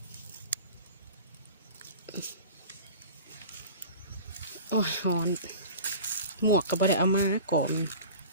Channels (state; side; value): inverted; both; correlation -0.39